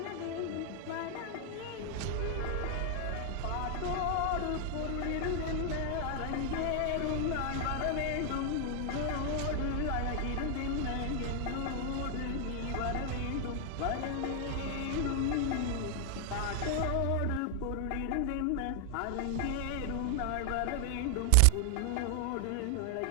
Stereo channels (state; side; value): different; both; correlation 0.00